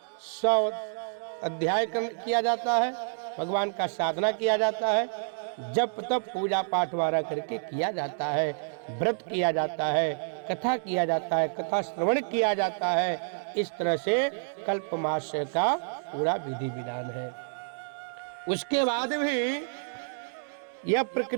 100 अध्याय किया जाता है, भगवान का साधना किया जाता है, जप तप पूजा पाठ वारा करके किया जाता है, व्रत किया जाता है, कथा किया जाता है, कथा श्रवण किया जाता है। इस तरह से कल्पमास का पूरा विधि विधान है। उसके बाद भी यह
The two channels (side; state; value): left; silent; digital silence